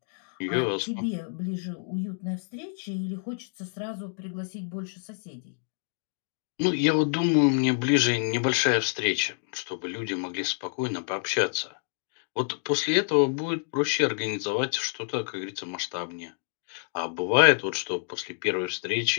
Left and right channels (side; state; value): right; silent; 59 dB below the other